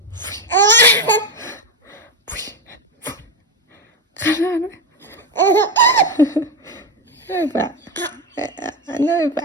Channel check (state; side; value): normal; both; correlation 0.11